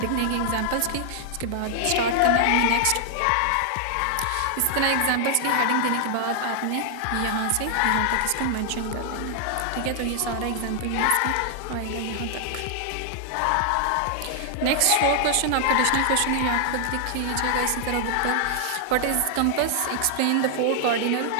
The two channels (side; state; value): both; different; correlation 0.00